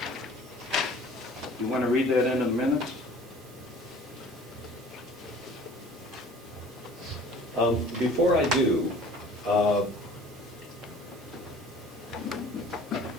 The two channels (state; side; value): normal; both; correlation 0.48